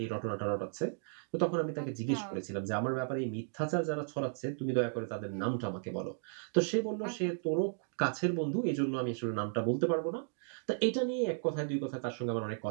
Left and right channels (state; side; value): silent; left; digital silence